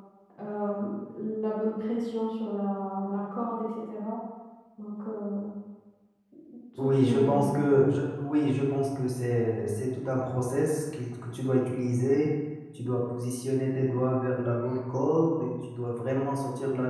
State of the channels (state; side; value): identical; both; correlation 1.00